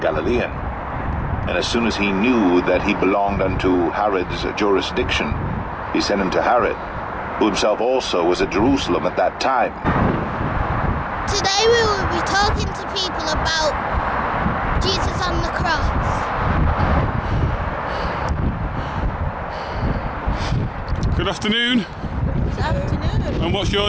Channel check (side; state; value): both; identical; correlation 1.00